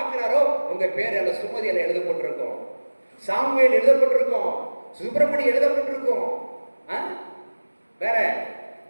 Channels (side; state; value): both; inverted; correlation -1.00